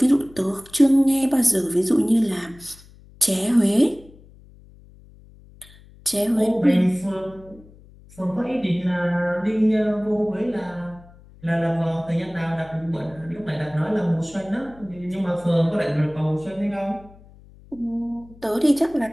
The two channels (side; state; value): left; noise; hum, 24 dB below the sound